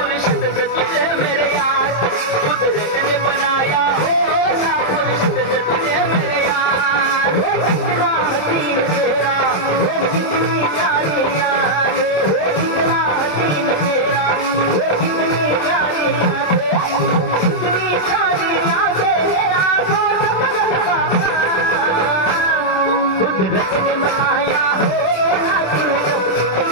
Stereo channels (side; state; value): right; late; 27 ms